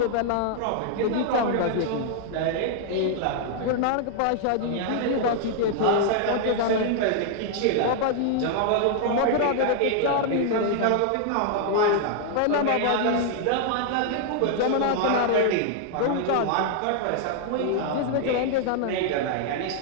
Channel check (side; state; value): both; different; correlation -0.01